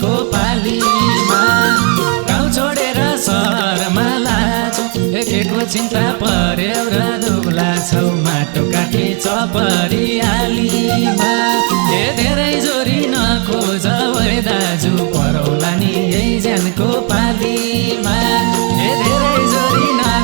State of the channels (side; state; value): left; quieter; 38.0 dB